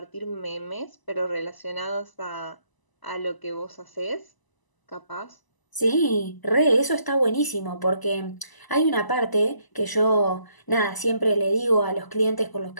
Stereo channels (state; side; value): late; right; 1.0 ms